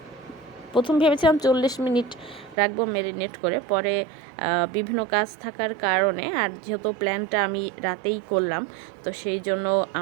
প্রথম ভেবেছিলাম 40 মিনিট রাখবো ম্যারিনেট করে, পরে বিভিন্ন কাজ থাকার কারণে, আর যেহেতু প্ল্যানটা আমি রাতেই করলাম, তো সেই জন্য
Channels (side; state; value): left; drops out; at 2.6 s